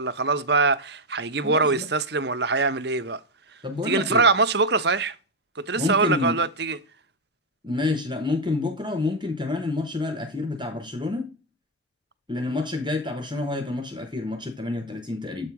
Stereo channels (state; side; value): normal; both; correlation 0.06